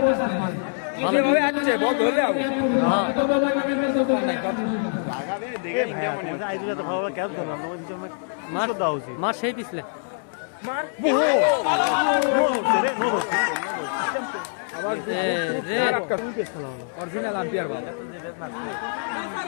ভালো আছে বল ধরলে হ্যাঁ লাগাবে দেখে ইন্ডিয়া মনে হচ্ছে আইজি তো ভালো ক্যাচ করলাম মার সেই পিছলে অরিজিনাল আম্পায়ার বল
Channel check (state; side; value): silent; right; digital silence